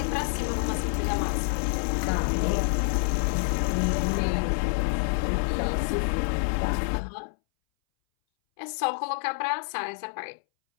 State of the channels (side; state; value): right; silent; 60 dB below the other